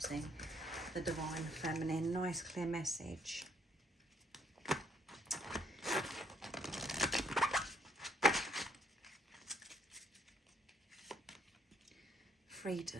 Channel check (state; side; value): normal; both; correlation 0.68